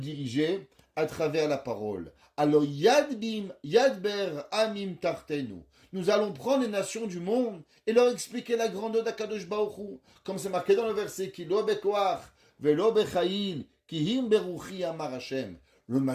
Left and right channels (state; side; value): identical; both; correlation 1.00